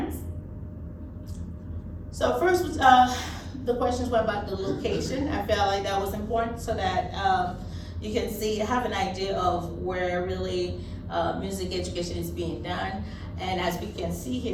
So first, the questions were about the location. I felt like that was important so that you can have an idea of where really music education is being done. And as we can see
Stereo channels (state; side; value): identical; both; correlation 1.00